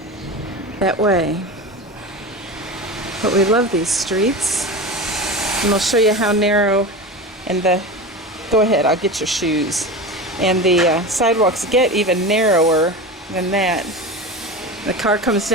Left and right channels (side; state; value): both; normal; correlation 0.27